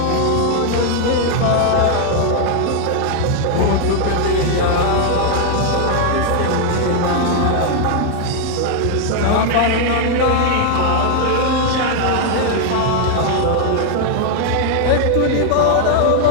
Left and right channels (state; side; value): different; both; correlation 0.00